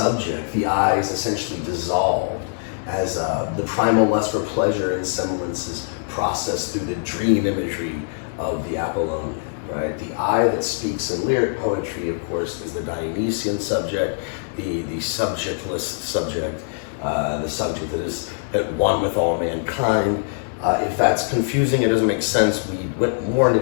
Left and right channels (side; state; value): right; silent; digital silence